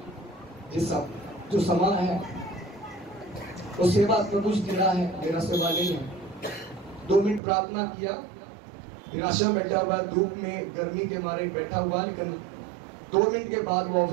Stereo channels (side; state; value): left; drops out; at 7.4 s